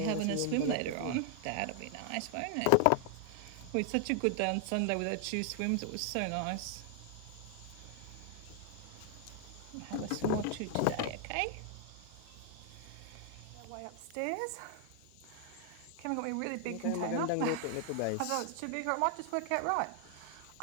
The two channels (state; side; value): different; both; correlation 0.00